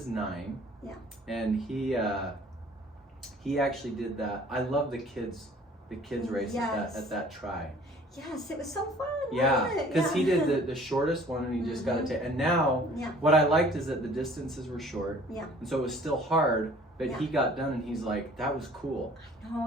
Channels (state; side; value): normal; both; correlation 0.52